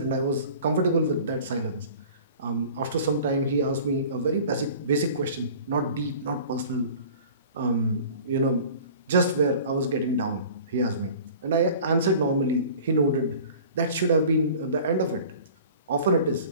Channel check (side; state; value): both; inverted; correlation -0.44